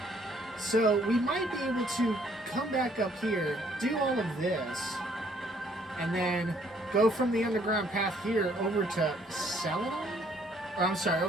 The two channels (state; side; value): normal; both; correlation 0.64